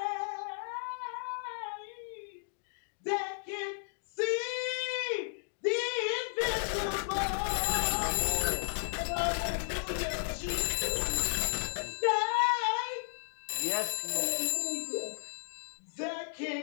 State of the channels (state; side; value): silent; right; digital silence